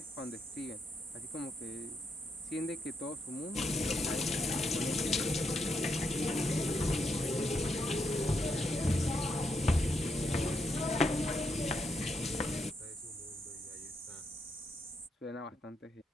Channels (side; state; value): both; normal; correlation 0.80